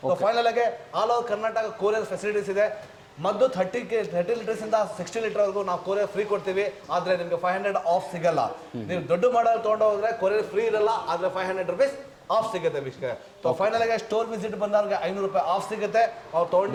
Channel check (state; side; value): identical; both; correlation 1.00